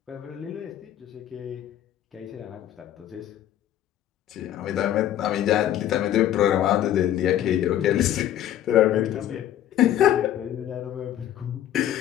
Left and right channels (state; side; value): quieter; right; 11.7 dB